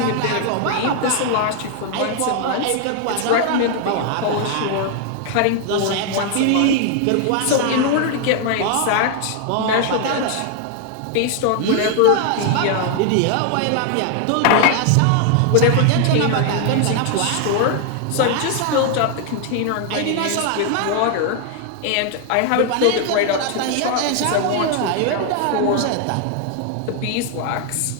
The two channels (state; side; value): different; both; correlation 0.00